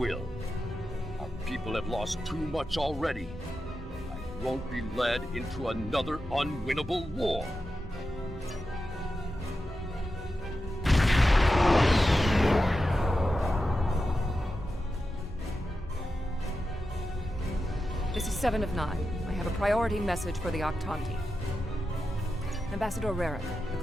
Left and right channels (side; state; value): both; normal; correlation 0.90